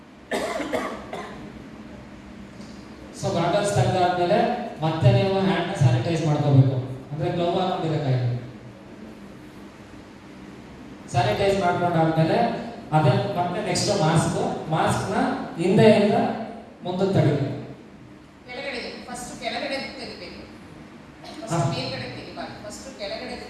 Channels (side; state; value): both; identical; correlation 1.00